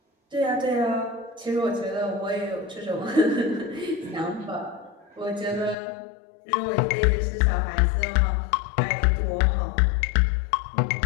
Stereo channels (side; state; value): right; drops out; at 5.8 s